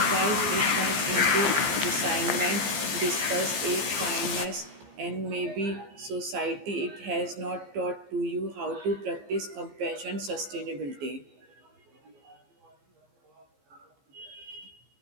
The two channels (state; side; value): late; left; 15 ms